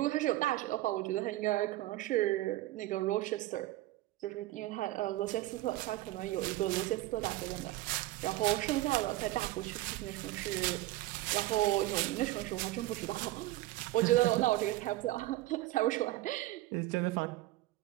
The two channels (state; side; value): quieter; left; 16.8 dB